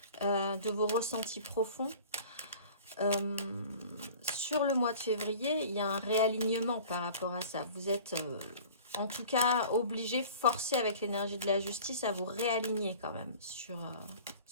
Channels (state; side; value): inverted; both; correlation -0.44